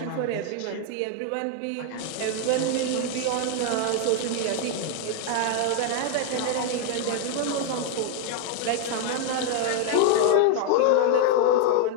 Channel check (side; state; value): both; different; correlation 0.00